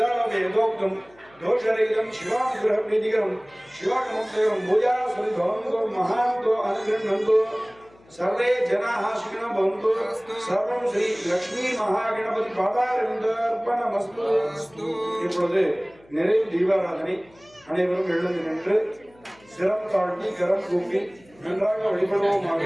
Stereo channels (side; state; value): left; noise; hum, 29 dB below the sound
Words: यथोक्तम् दोषरहितं शिवानुग्रह प्रीतिकरं शिवागमोक्तकरं पूजा सुभवन्तु महान्तो अनुगृह्णन्तु सर्वे जनाः सुखिनो भवन्तु सर्वं श्री लक्ष्मी महागणपति पादारविन्दार्पणमस्तु இப்பொழுது நிறைவு தீபாராதனை அனைவரும் எழுந்து நின்று சிரம் தாழ்த்தி கரம் கூப்பி நன்றாக வழிபடுவோமாக